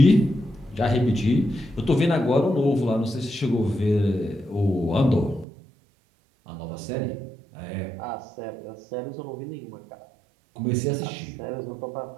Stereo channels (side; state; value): left; drops out; at 5.5 s